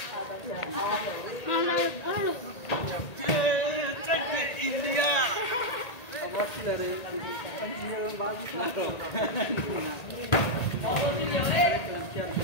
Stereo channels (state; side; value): late; right; 1.8 ms